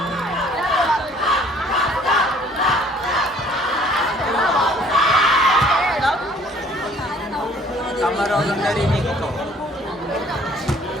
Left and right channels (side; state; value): both; normal; correlation 0.57